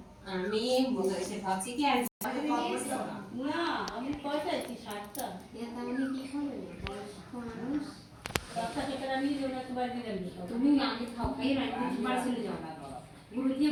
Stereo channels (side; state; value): both; identical; correlation 1.00